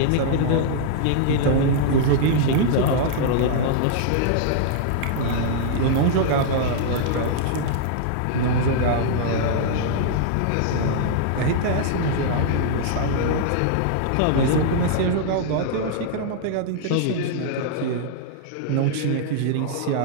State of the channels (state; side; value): different; both; correlation -0.01